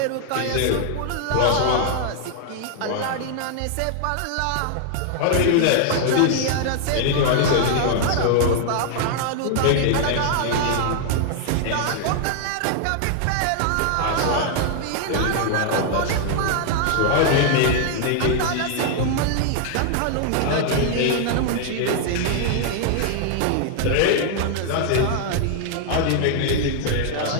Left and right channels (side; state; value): both; different; correlation 0.00